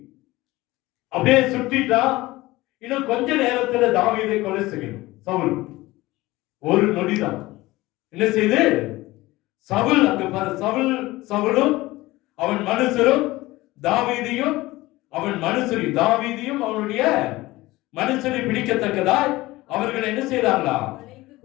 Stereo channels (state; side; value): quieter; right; 19.2 dB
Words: அப்படியே சுட்டிட்டான். இன்னும் கொஞ்ச நேரத்துல தாவீதை கொலை செய்யணும் சவுல். ஒரு நொடிதான். என்ன செய்து சவுல் அங்க பாரு, சவுலும் அவன் மனுஷரும் தாவீதையும் அவன் மனுஷரையும் தாவீதையும் அவனுடைய மனுஷரை பிடிக்கத்தக்கதாய் அவர்கள் என்ன செய்தாங்களா?